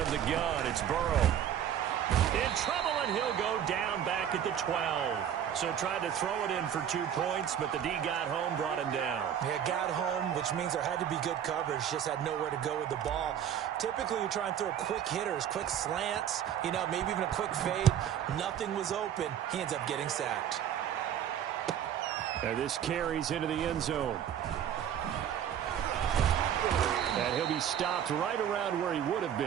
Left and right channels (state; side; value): quieter; left; 9.6 dB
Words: the gun, it's Burrow. In trouble, and he'll go down back at the 12. So tried to throw it in for 2 points, but the D got home, brought him down. Yeah, got home, which means there had to be good coverage. Just had nowhere to go with the ball. Typically, you try and throw quick hitters, quick slants, maybe even a quick fade. Nothing was open. He ends up getting sacked. And this carries into the end zone. And he'll be stopped right around where he would have